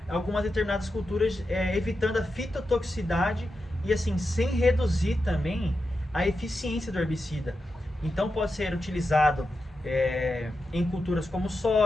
algumas determinadas culturas, evitando a fitotoxicidade e assim, sem reduzir também a eficiência do herbicida. Então pode ser utilizado em culturas como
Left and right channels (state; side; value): normal; both; correlation 0.89